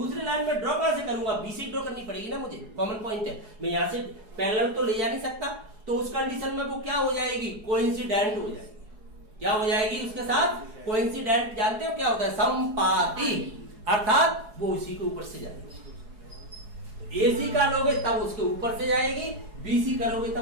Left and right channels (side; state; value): left; late; 4.8 ms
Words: लाइन में ड्रॉ कहां से करूंगा, बी से ड्रॉ करनी पड़ेगी ना मुझे, कॉमन पॉइंट है, मैं यहां से पैरेलल तो ले जा नहीं सकता, तो उस कंडीशन में वो क्या हो जाएगी, कोइंसिडेंट हो जाएगी, क्या हो जाएगी उसके साथ कोइंसिडेंट, जानते हो क्या होता है, संपाती, अर्थात वो उसी के ऊपर से जाएगी, एसी का लोगे तब उसके ऊपर से जाएगी, बीसी करोगे